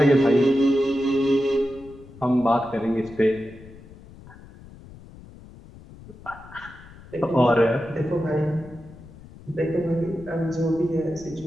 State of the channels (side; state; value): left; noise; rumble, 20 dB below the sound